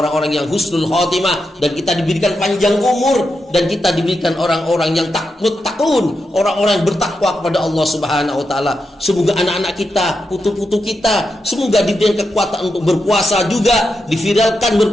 yang husnul khotimah, dan kita diberikan panjang umur, dan kita diberikan orang-orang yang takun, orang-orang yang bertakwa kepada Allah Subhanahu wa taala. Semoga anak-anak kita, putu-putu kita, semoga diberikan kekuatan untuk berpuasa juga, diviralkan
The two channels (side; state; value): both; normal; correlation 0.86